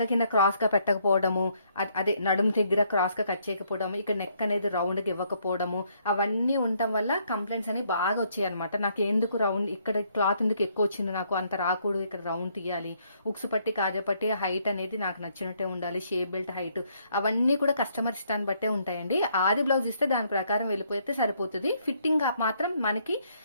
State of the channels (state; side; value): inverted; both; correlation -0.70